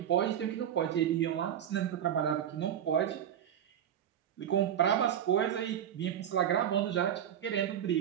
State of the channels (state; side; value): quieter; left; 9.9 dB